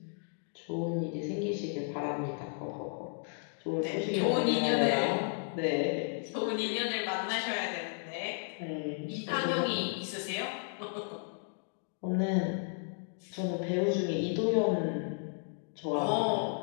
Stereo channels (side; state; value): right; silent; 55 dB below the other